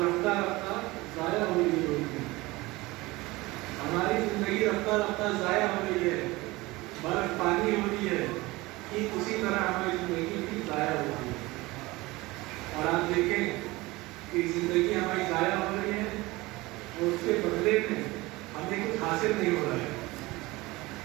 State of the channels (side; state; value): left; quieter; 21.1 dB